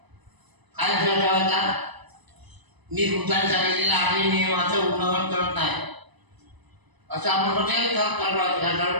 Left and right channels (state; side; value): late; left; 1.0 ms